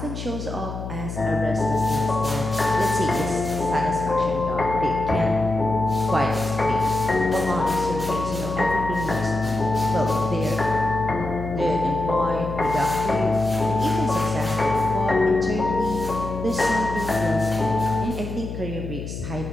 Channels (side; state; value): left; noise; hum, 7 dB below the sound